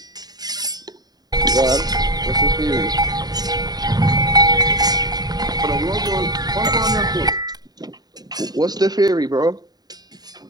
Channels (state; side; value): late; left; 0.19 ms